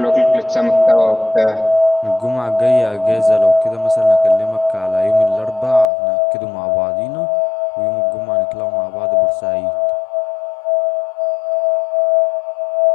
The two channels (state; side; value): drops out; right; at 5.9 s